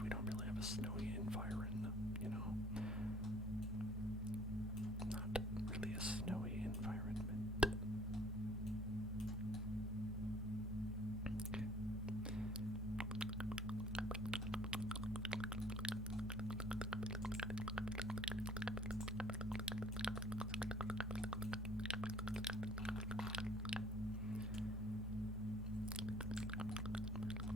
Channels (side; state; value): both; normal; correlation 0.53